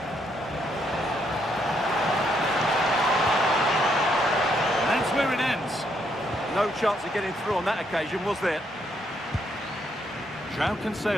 chance. No chance of getting through on that occasion, was there? João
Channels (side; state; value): both; normal; correlation 0.74